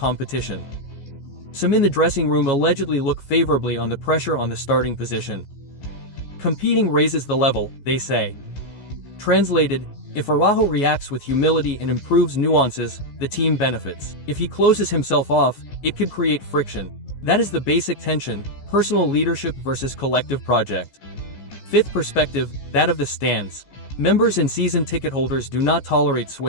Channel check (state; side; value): late; right; 14 ms